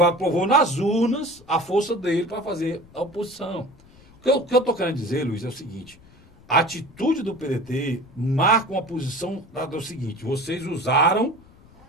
provou nas urnas a força dele para fazer a oposição. O que eu estou querendo dizer, Luiz, é o seguinte: a atitude do PDT marca uma posição do seguinte: vocês usaram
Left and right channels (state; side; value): noise; left; rumble, 26 dB below the sound